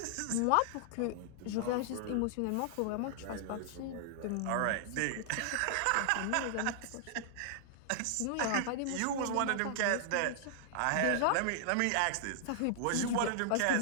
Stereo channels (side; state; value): both; different; correlation -0.01